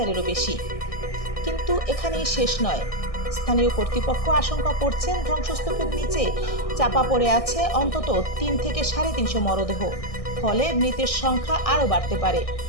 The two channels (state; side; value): late; right; 1.6 ms